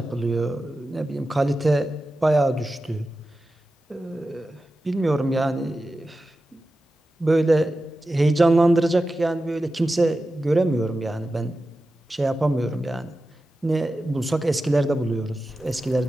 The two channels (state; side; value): normal; both; correlation 0.93